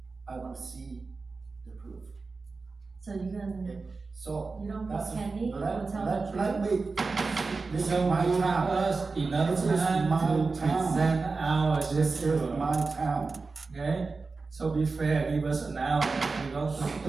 I want to see the proof. So you can, Okay, so. you don't that's- think Kenny will let- tell let- the truth? Let me, this is So my you have town. us enough This is time my to town. present our This is discipline, my town. okay? So be fair, give us an hour, we're going to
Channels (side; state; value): left; quieter; 4.1 dB